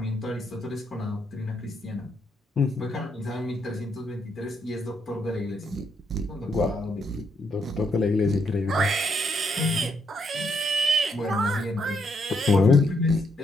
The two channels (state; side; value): normal; both; correlation 0.75